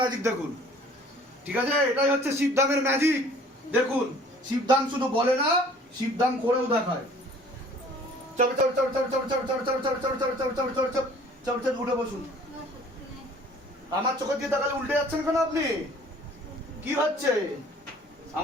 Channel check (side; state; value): both; normal; correlation 0.52